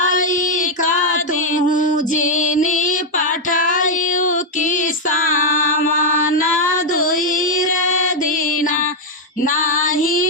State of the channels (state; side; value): normal; both; correlation 0.01